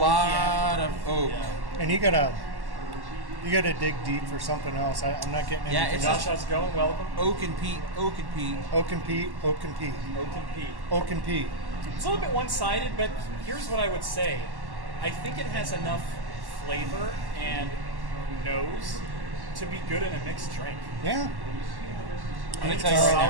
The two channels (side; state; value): left; late; 1.1 ms